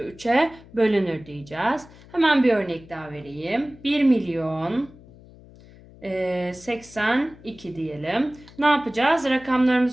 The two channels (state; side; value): noise; left; hum, 22 dB below the sound